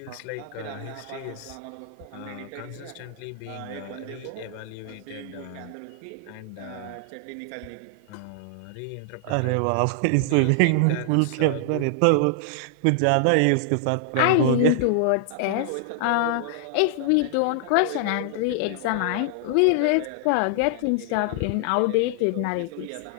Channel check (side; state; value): both; different; correlation -0.01